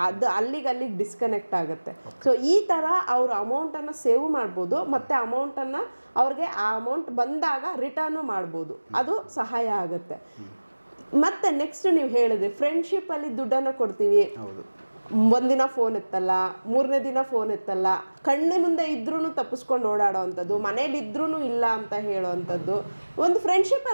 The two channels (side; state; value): both; inverted; correlation -1.00